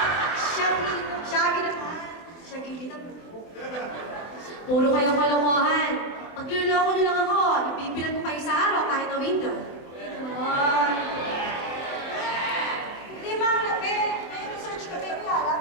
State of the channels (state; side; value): late; right; 24 ms